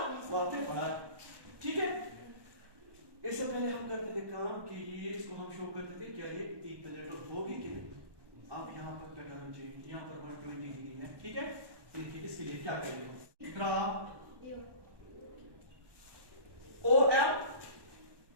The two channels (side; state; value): left; late; 1.2 ms